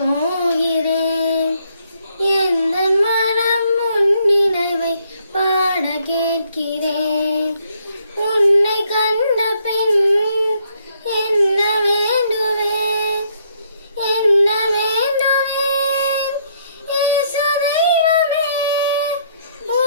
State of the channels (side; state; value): both; inverted; correlation -0.70